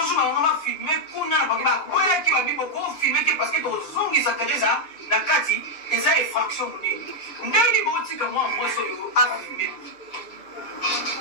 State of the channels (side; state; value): right; late; 6.8 ms